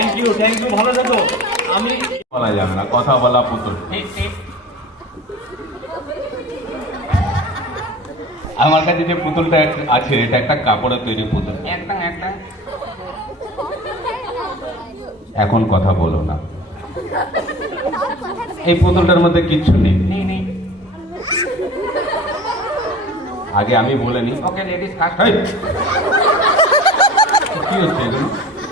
you, ভালো থাকো। আমি বলা যাবে না, কথা বলা পুতুল। ঠিক ঠিক। আমার কাছে যে পুতুলটা আছে এটা একটা কাপড়ের তৈরি পুতুল। একদম একদম। এখন কথা বলো না, এই পুতুলটার মধ্যে কিচ্ছু নেই। নেই নেই। আগে আমি বলে নি। ওকে লেডিস ফার্স্ট। এই, কি হচ্ছে এগুলো?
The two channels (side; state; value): both; normal; correlation 0.39